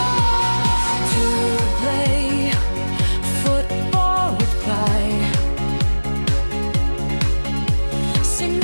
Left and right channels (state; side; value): inverted; both; correlation -1.00